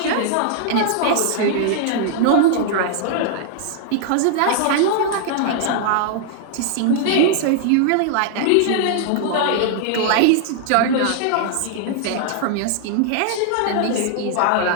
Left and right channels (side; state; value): both; different; correlation -0.01